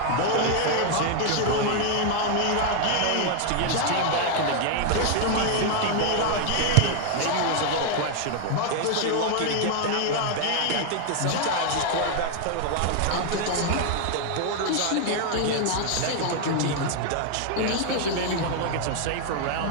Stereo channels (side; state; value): both; different; correlation 0.00